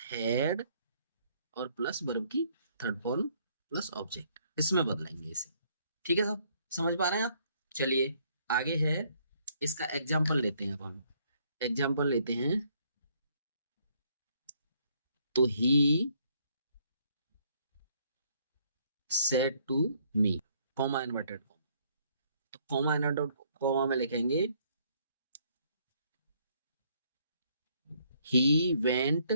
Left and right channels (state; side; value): inverted; both; correlation -0.67